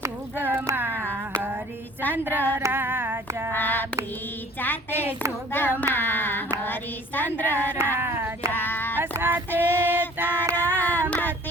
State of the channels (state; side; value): normal; both; correlation 0.49